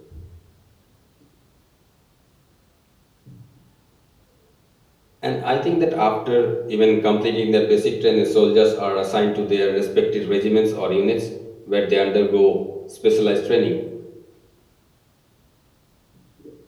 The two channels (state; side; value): identical; both; correlation 1.00